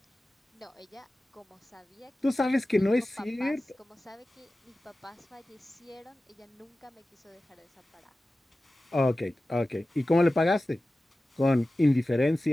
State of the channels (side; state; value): both; normal; correlation 0.95